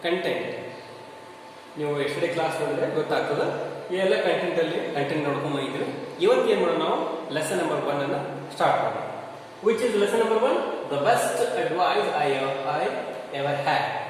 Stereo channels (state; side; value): identical; both; correlation 1.00